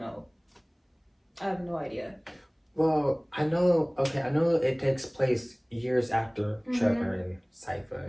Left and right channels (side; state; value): both; identical; correlation 1.00